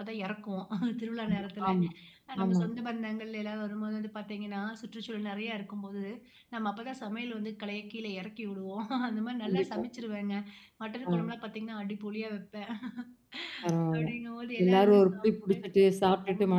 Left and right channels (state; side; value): identical; both; correlation 1.00